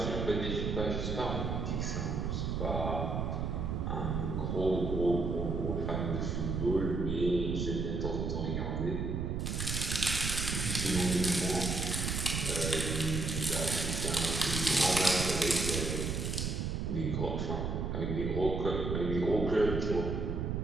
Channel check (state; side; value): noise; right; rumble, 1 dB below the sound